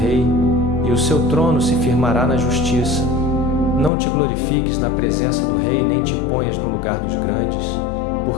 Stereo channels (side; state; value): right; drops out; at 3.9 s